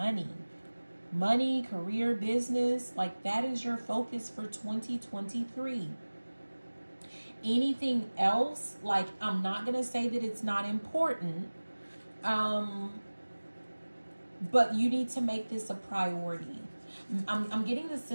Money, career, business, like that is your focus for 2023. Anything else, like, I'm not going to say that it's not important, but you need to make this a priority. I'm getting the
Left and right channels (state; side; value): inverted; both; correlation -1.00